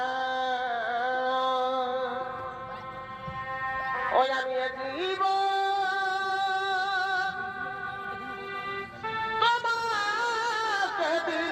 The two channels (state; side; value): identical; both; correlation 1.00